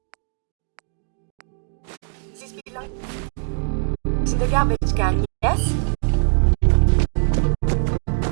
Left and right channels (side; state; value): left; silent; digital silence